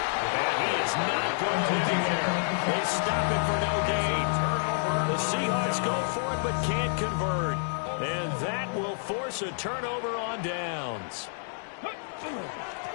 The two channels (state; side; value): silent; right; digital silence